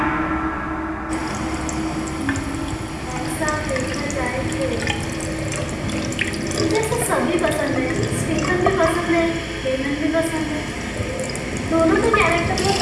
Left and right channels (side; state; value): both; identical; correlation 1.00